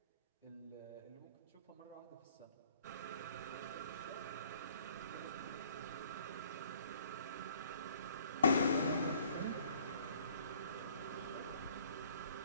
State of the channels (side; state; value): both; inverted; correlation -0.58